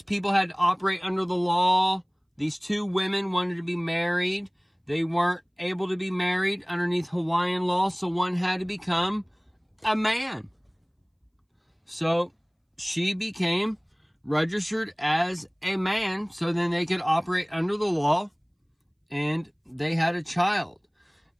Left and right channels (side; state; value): both; identical; correlation 1.00